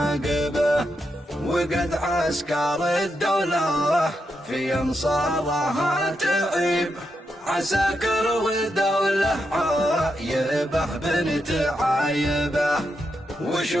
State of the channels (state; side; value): normal; both; correlation 0.84